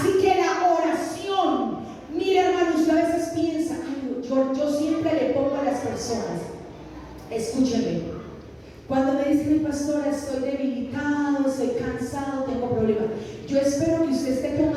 que la oración, mire hermano, usted a veces piensa, ay, yo siempre le pongo a las personas, escúcheme, cuando me dicen, mi pastora, estoy debilitado, estoy cansado, tengo problemas, yo espero que usted esté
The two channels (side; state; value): both; identical; correlation 1.00